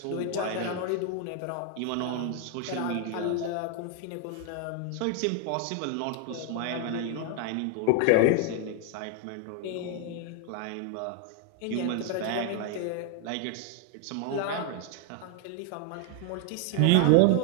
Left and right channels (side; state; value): both; different; correlation 0.00